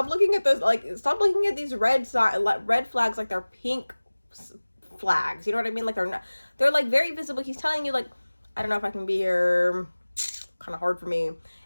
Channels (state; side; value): inverted; both; correlation -1.00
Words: looking at this, like, stop looking at these red flags like they're pink flags. You know what I mean? Like, they're like very visible. He's telling you like, I don't know if I can be here, kind of hard for me.